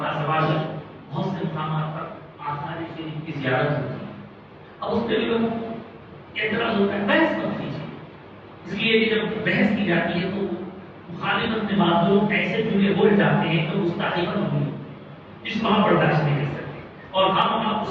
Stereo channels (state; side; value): identical; both; correlation 1.00